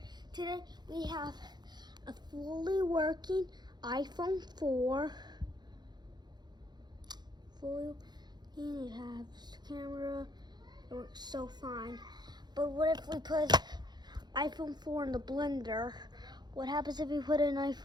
Today we have a fully working iPhone 4. It has camera. It works so fine. But what if we put iPhone 4 in the blender? What happens if we put an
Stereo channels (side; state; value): left; late; 0.21 ms